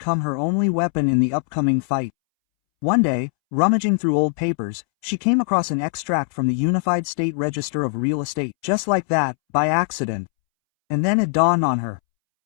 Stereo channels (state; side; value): silent; right; 65 dB below the other